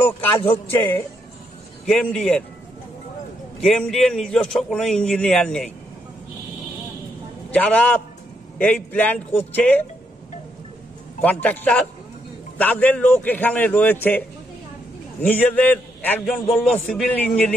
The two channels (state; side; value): normal; both; correlation 0.77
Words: কাজ হচ্ছে কেএমডিএর নিজস্ব কোনো ইঞ্জিনিয়ার নেই। যারা এই প্ল্যান করছে কন্ট্রাক্টর, তাদের লোক এখানে রয়েছে। নিজেদের একজন বলল সিভিল